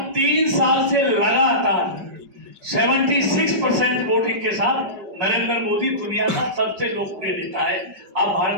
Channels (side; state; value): left; late; 5.1 ms